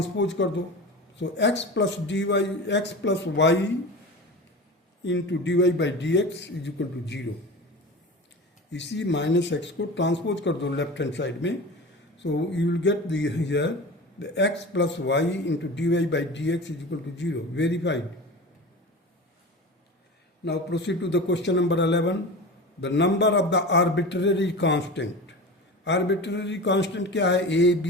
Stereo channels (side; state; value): both; normal; correlation 0.31